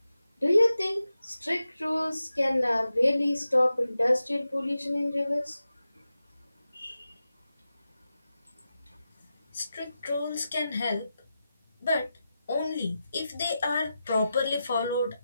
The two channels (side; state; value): both; inverted; correlation -0.91